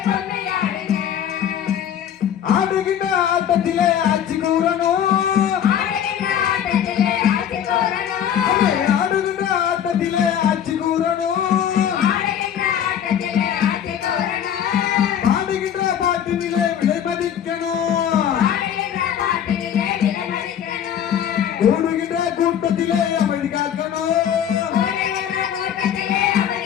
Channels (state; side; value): quieter; right; 9.4 dB